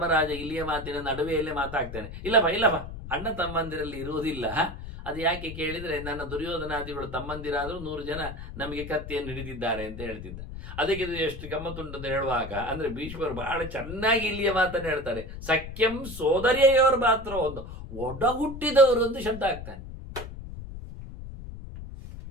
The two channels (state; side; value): noise; left; rumble, 10 dB below the sound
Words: ಇಲ್ಲಿಯ ಮಾತಿನ ನಡುವೆಯಲ್ಲೇ ಮಾತಾಡ್ತಾನೆ. ಇಲ್ಲಪ್ಪ ಅಣ್ಣ ತಮ್ಮಂದಿರಲ್ಲಿ ಇರುವುದಿಲ್ಲ. ಅದು ಯಾಕೆ ಕೇಳಿದ್ರೆ, ನನ್ನ ದುರ್ಯೋಧನಾದಿಗಳು ತಮ್ಮಂದಿರಾದರೂ 100 ಜನ ನಮಗೆ ಕತ್ತಿಯನ್ನು ಹಿಡಿದಿದ್ದಾರೆ ಅಂತ ಹೇಳ್ತಿದ್ದ. ಅದಕ್ಕೆ ಇದು ಎಷ್ಟು ಗಮ್ಮತ್ತುಂಟು ಅಂತ ಹೇಳುವಾಗ, ಅಂದ್ರೆ ಭೀಷ್ಮರು ಬಹಳ ಚೆನ್ನಾಗಿ ಇಲ್ಲಿಯ ಮಾತನ್ನು ಹೇಳ್ತಾರೆ. ಸಖ್ಯಂ ಸೋದರಿಯವರು ಮಾತ್ರ ಒಂದು ಒಡ ಹುಟ್ಟಿದವರು ಒಂದು ಶಬ್ದ ಆಗ್ತಾನೆ.